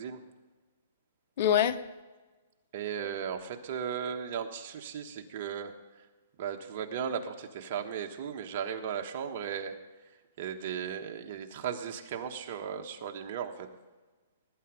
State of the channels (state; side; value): inverted; both; correlation -0.33